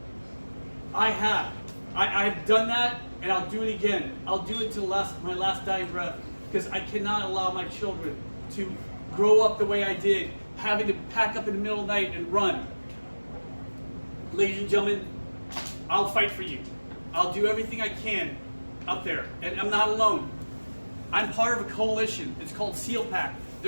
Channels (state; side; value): inverted; both; correlation -1.00